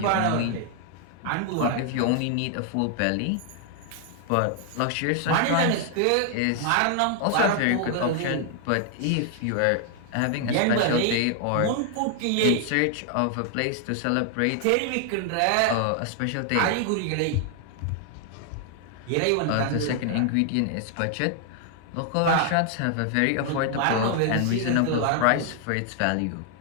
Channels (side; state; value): both; different; correlation 0.00